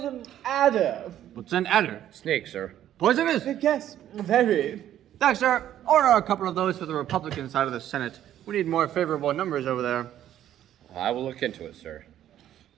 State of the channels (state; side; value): quieter; left; 11.6 dB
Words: adder. What's an adder? Snake, sir. Poisonous? Yes, very. Thanks, sir. Order a couple of those for the Republican side of the Senate. We need more favorable numbers over there. I will look into it, sir.